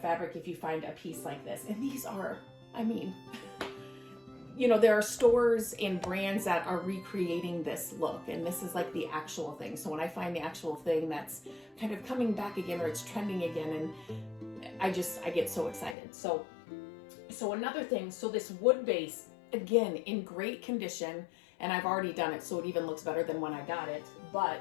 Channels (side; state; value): right; drops out; at 16.0 s